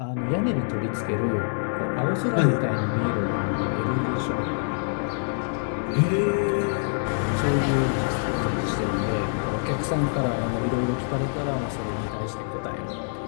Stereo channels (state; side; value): silent; right; digital silence